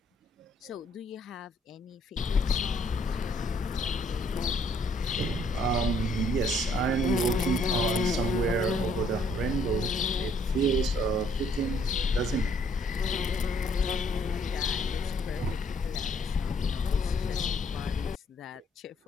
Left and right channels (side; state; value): both; normal; correlation 0.65